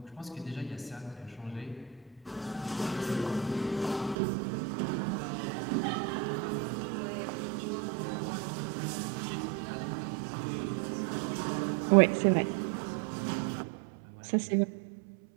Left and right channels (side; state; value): left; drops out; at 4.2 s